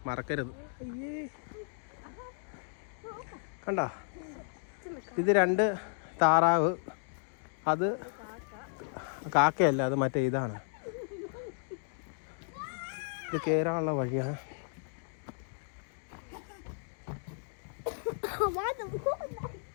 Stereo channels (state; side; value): silent; right; digital silence